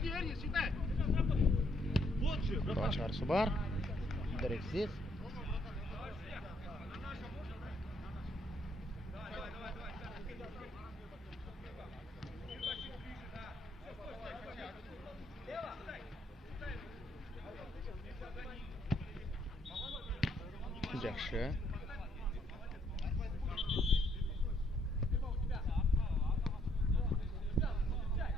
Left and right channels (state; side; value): normal; both; correlation 0.70